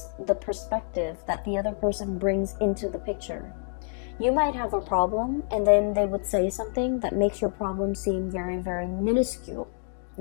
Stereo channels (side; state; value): right; silent; digital silence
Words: the perspective that the other person brings into the picture. You might have a problem, and then they would say something that makes your problem seem very, very minuscule.